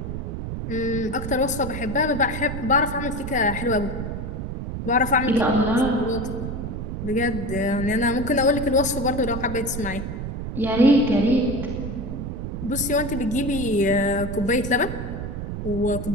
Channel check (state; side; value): noise; right; rumble, 5 dB below the sound